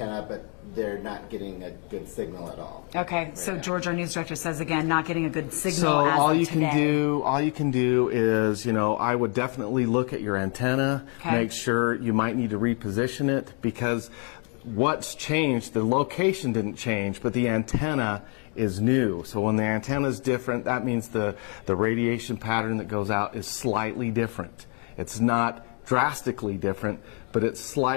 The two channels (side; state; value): right; quieter; 36.4 dB